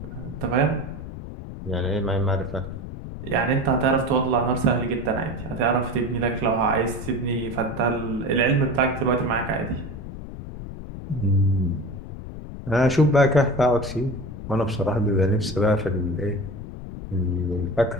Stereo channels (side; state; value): left; noise; rumble, 10 dB below the sound